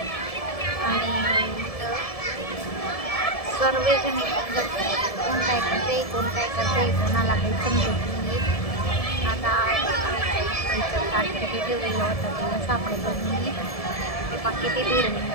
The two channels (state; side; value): late; right; 1.7 ms